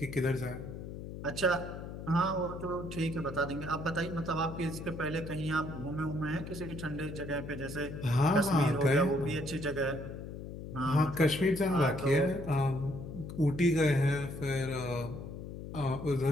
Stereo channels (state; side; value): noise; left; hum, 9 dB below the sound